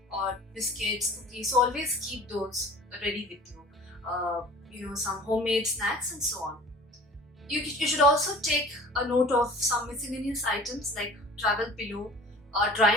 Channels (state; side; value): normal; both; correlation 0.44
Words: or biscuits, cookies. So always keep those ready with you. Some homemade snacks and so on. You should also take a note of some miscellaneous items like travel pillow, a